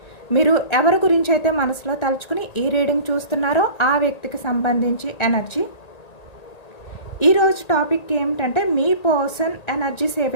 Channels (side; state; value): right; late; 1.9 ms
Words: మీరు ఎవరి గురించి అయితే మనసులో తలుచుకుని ఈ రీడింగ్ చూస్తున్నారో ఆ వ్యక్తికి సంబంధించి ఎనర్జీ. ఈరోజు టాపిక్ ఏమిటంటే మీ పర్సన్ ఎనర్జీస్ ఏ